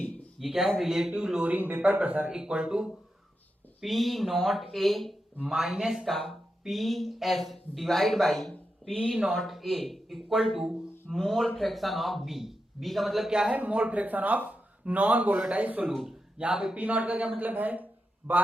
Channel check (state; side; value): normal; both; correlation 0.88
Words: ये क्या है, relative lowering vapour pressure equal to P naught A minus का P S divide by P naught A equal to mole fraction of B. B का मतलब क्या है, mole fraction of non volatile solute. यहाँ पे पी नॉट का क्या मतलब है,